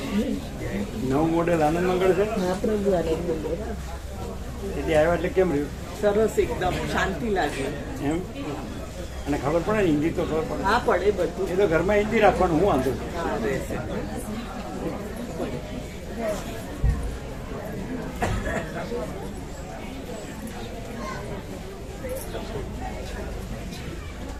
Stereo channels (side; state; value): both; identical; correlation 1.00